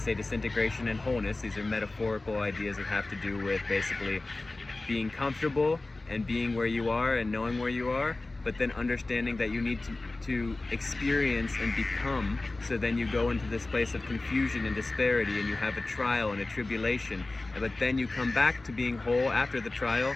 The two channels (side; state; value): right; quieter; 3.1 dB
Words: disintegration and wholeness, these are metaphorical ideas that have to do with basically being comfortable and being where you are and knowing where you are, but then understanding that you need to experience and become, so then you go into this place of confusion and disparity, and you have a trial and a tribulation, but then you come back to being whole after the trial,